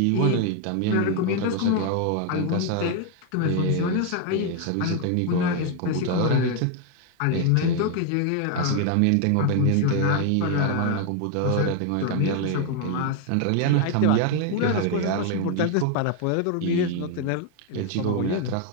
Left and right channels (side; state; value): both; different; correlation 0.01